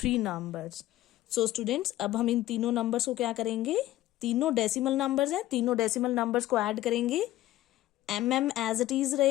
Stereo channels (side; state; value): right; quieter; 15.1 dB